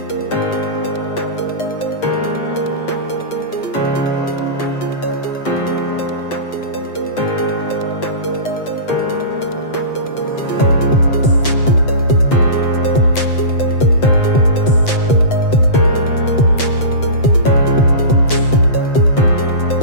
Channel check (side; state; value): right; late; 7.9 ms